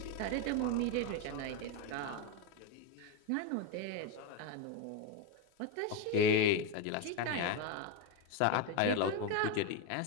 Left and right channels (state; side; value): different; both; correlation 0.03